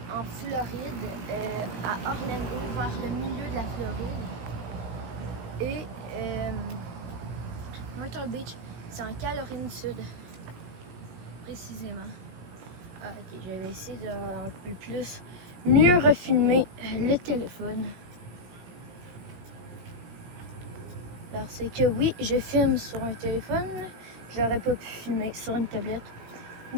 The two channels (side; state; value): left; late; 17 ms